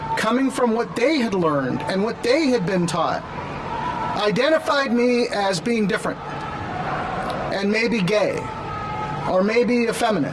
coming from what they had learned and what they had been taught, identified me as being different and maybe gay or maybe effeminate.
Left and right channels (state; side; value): identical; both; correlation 1.00